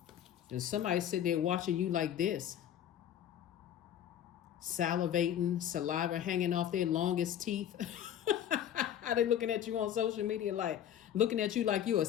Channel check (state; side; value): quieter; right; 10.3 dB